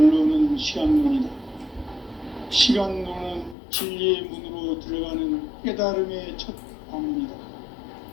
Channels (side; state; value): right; drops out; at 3.6 s